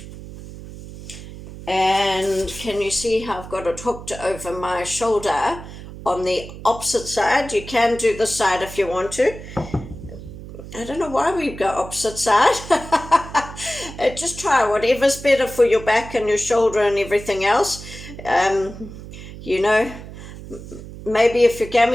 And can you see how I've got it hooked over my shoulder on the opposite side? You can do the side if you want to. I don't know why we go opposite side. Just try whatever's better for your back and your shoulder and everything else. Maybe if your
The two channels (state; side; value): noise; right; hum, 13 dB below the sound